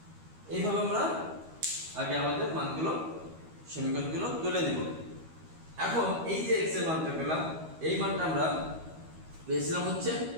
এইভাবে আমরা আগে আমাদের মানগুলো সমীকরণগুলো তুলে নেব। এখন এই যে x এর মানটা পেলাম, এই মানটা আমরা পেয়েছিলাম হচ্ছে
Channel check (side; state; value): left; late; 13 ms